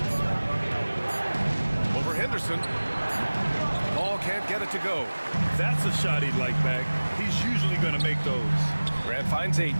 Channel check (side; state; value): both; inverted; correlation -1.00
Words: Over Henderson. Paul can't get it to go. That's a shot he'd like back. He's usually going to make those. Grant finds Ayton.